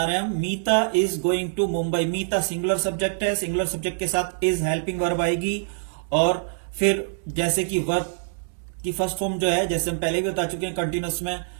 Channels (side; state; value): left; silent; digital silence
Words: रहे हैं हम। Meeta is going to Mumbai. Meeta singular subject है, सिंगुलर सब्जेक्ट के साथ इज हेल्पिंग वर्ब आएगी और फिर जैसे कि वर्ब की फर्स्ट फॉर्म जो है, जैसे हम पहले भी बता चुके हैं कंटिन्यूअस में